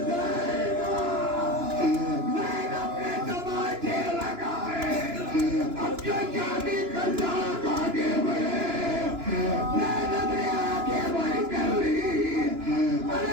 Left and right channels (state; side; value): late; left; 2.9 ms